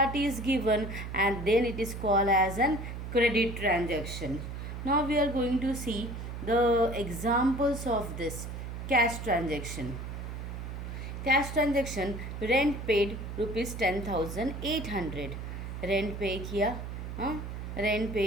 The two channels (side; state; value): right; noise; hum, 7 dB below the sound